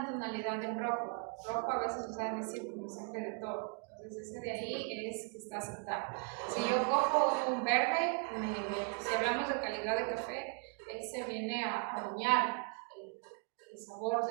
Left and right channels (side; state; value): left; quieter; 38.6 dB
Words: tonalidad en rojo. Rojo a veces usan decir como siempre de todo. Entonces ese de ahí es que está aceptable. Si yo cojo un verde, si hablamos de calidad de café, ese viene a dañar el sabor